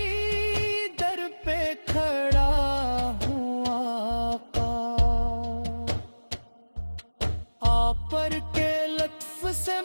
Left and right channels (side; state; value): both; inverted; correlation -1.00